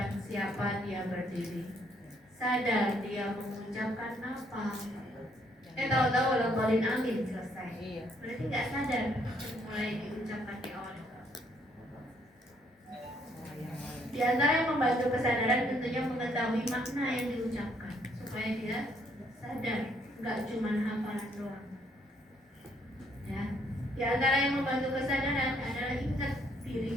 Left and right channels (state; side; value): normal; both; correlation 0.69